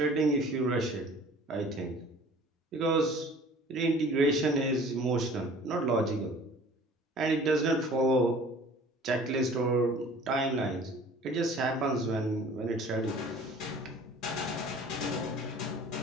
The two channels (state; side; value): normal; both; correlation 0.48